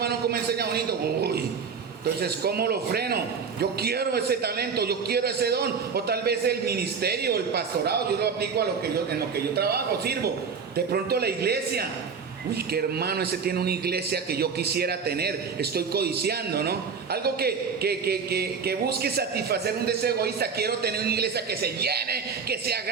cómo enseña bonito. Uy, entonces, ¿cómo lo freno? Yo quiero ese talento, yo quiero ese don. O tal vez el ministerio, el pastorado, yo lo aplico en lo que yo trabajo, sirvo. De pronto la iglesia. Uy, qué hermano, ese tiene una iglesia que yo quisiera tener. Estoy codiciando, ¿no? Algo que busque satisfacer un deseo egoísta. Quiero tener una iglesia que se llene, que sea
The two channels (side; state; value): left; quieter; 5.8 dB